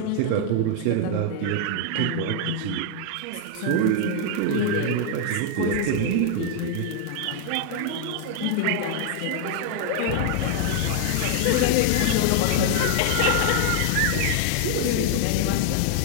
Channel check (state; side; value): different; both; correlation 0.00